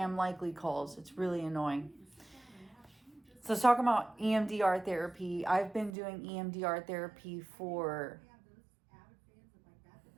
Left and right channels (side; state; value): left; drops out; at 5.9 s